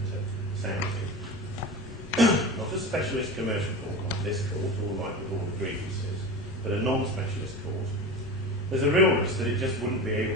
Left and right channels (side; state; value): both; normal; correlation 0.29